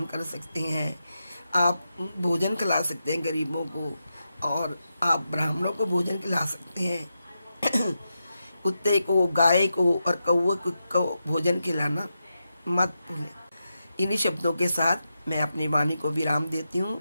कर सकते हैं, आप भोजन खिला सकते हैं गरीबों को, और आप ब्राह्मणों को भोजन खिला सकते हैं। कुत्ते को, गाय को और कौवे को भोजन खिलाना मत भूलें। इन्हीं शब्दों के साथ मैं अपनी वाणी को विराम देती हूँ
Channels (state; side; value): inverted; both; correlation -0.88